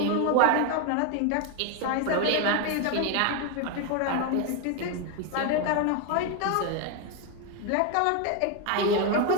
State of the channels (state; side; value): different; both; correlation 0.01